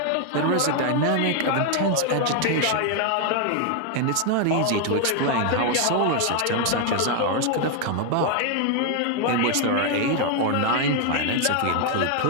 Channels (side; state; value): both; different; correlation 0.00